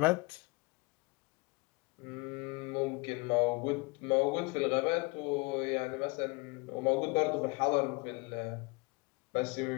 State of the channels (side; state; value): right; quieter; 28.3 dB